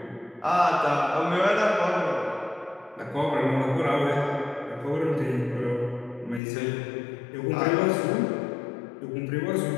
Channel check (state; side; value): drops out; right; at 6.4 s